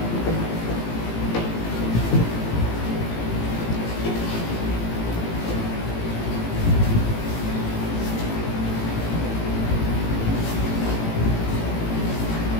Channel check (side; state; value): right; late; 18 ms